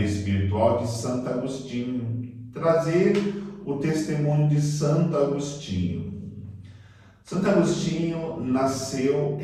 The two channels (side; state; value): both; identical; correlation 1.00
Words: espiritual de Santo Agostinho. Trazer o testemunho de Santo Agostinho. Santo Agostinho nasceu